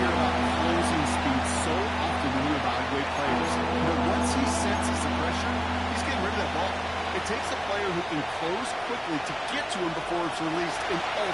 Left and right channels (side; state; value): both; identical; correlation 1.00